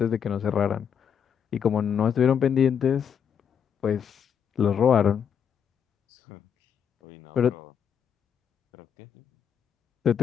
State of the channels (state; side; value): quieter; right; 7.8 dB